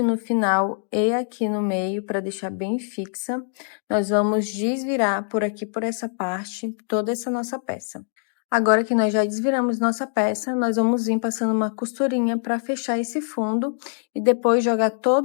no final e aqui no meio, para deixar bem fixa. Nós vamos desvirar por aqui, por essa parte, toda essa nossa peça. Agora que nós já desviramos nossa peça, nós vamos vir passando uma costurinha para fechar esse fundo e depois jogar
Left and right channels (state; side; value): silent; right; digital silence